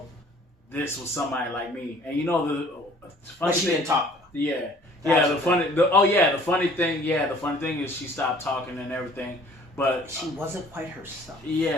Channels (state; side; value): normal; both; correlation 0.53